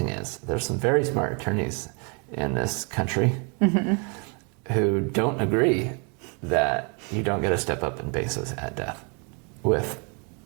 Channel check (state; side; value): quieter; left; 35.4 dB